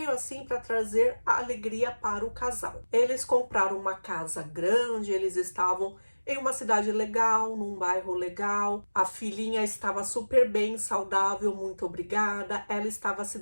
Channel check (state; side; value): inverted; both; correlation -1.00